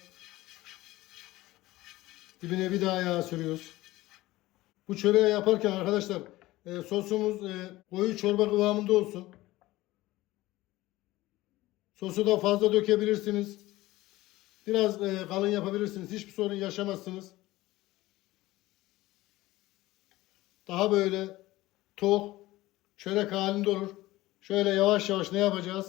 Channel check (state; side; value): quieter; right; 17.9 dB